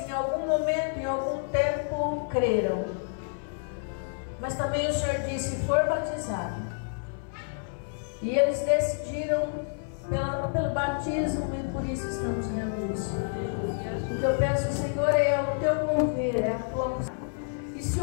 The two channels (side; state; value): right; silent; 59 dB below the other